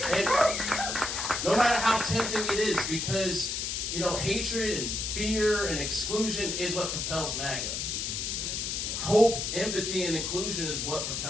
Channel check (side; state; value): left; noise; hiss, 2 dB below the sound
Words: And no matter how tempting it is, because, hatred and fear and exclusion is what propels MAGA. Hope, empathy, and inclusion is what